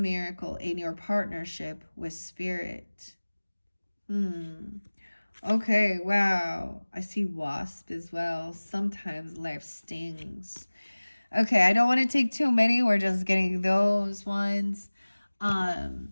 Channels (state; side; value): inverted; both; correlation -1.00